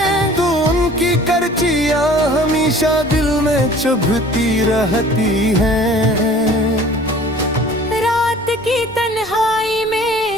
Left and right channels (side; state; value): left; noise; rumble, 23 dB below the sound